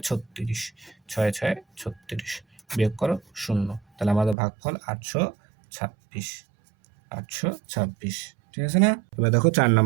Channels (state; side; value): drops out; left; at 4.4 s